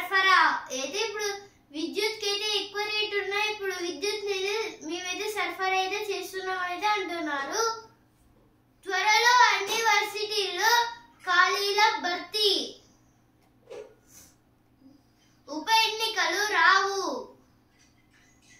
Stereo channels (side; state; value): both; identical; correlation 1.00